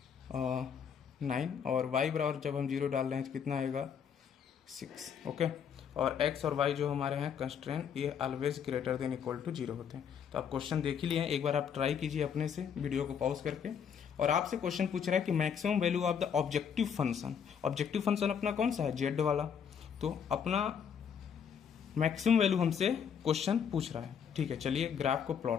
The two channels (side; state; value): right; quieter; 7.5 dB